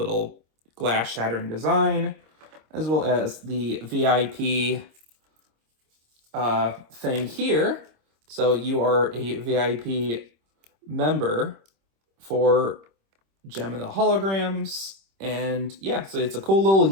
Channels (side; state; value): left; late; 26 ms